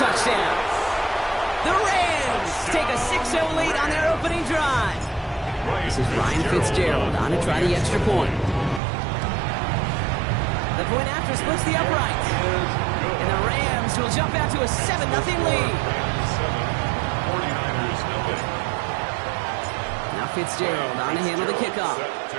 The Rams take a 6-0 lead on their opening drive. This is Ryan Fitzgerald on to try the extra point. The point after splits the uprights. And the Rams will jump out to a 7-0 lead. Now Fitzgerald on to handle the kickoff.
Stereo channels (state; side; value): drops out; left; at 8.8 s